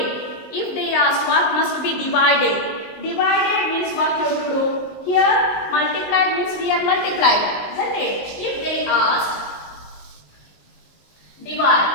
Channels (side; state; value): right; late; 19 ms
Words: If they ask what must be divided. Divided means what you have to do. Here multiplied means we are multiplied. Isn't it? If they ask